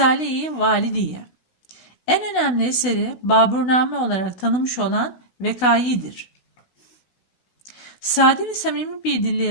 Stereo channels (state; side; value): late; right; 16 ms